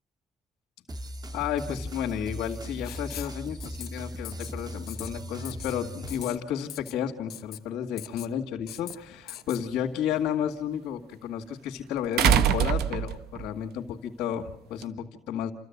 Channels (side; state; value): both; normal; correlation 0.45